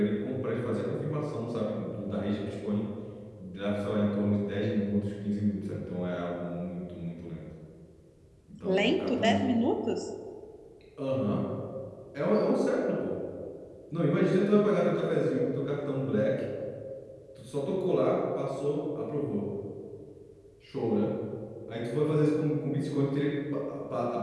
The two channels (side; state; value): both; identical; correlation 1.00